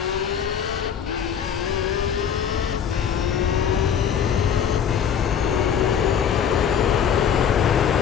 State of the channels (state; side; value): quieter; right; 8.1 dB